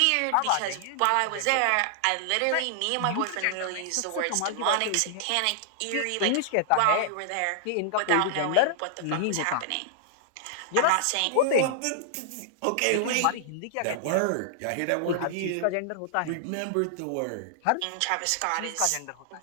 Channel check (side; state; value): both; different; correlation -0.01